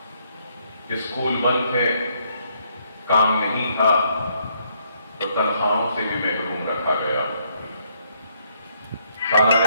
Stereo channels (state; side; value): inverted; both; correlation -0.71